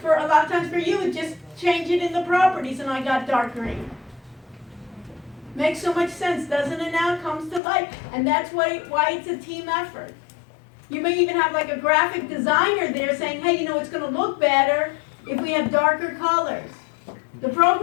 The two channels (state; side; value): drops out; right; at 7.6 s